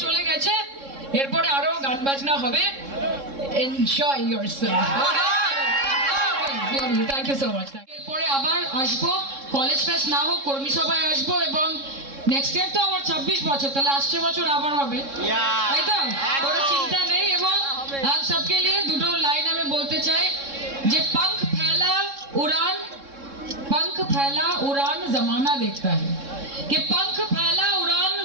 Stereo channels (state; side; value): late; left; 3.6 ms